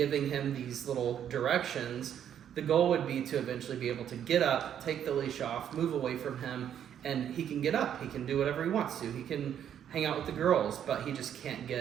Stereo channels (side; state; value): left; quieter; 9.5 dB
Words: him these little directions, the goal would be to eventually be able to get up, take the leash off, move away from him, and he can get up. He can do whatever he wants to. He can hang out with the girls, but he just can't